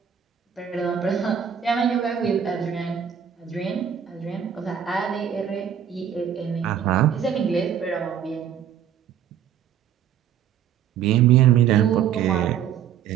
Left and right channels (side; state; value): left; quieter; 8.9 dB